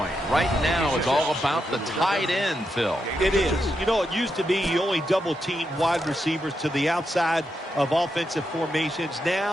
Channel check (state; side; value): normal; both; correlation 0.84